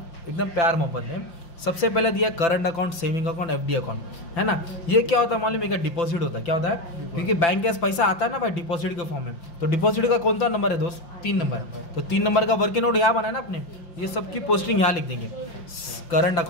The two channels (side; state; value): right; late; 5.7 ms